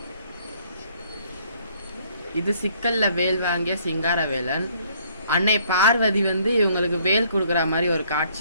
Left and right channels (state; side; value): inverted; both; correlation -0.63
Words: இது சிக்கலில் வேல் வாங்கிய சிங்கார வேலன். அன்னை பார்வதி வந்து இவங்களுக்கு வேல் கொடுக்குற மாதிரி ஒரு